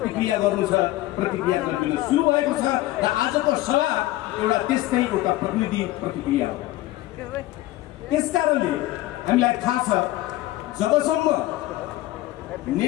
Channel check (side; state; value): right; quieter; 16.7 dB